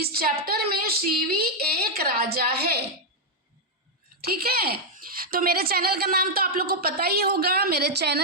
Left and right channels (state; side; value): normal; both; correlation -0.01